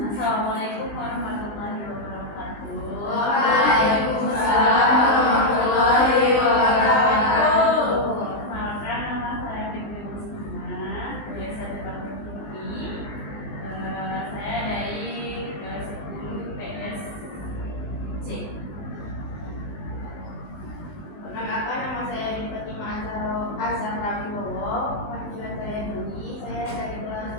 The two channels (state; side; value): late; right; 20 ms